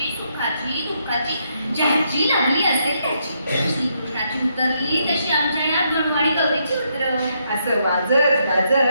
सुखाची, दुःखाची, ज्याची लागली असेल त्याची. श्रीकृष्णाची उतरली तशी आमच्या या गणवाडी गौरीची उतर. असं वाजत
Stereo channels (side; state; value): both; inverted; correlation -0.77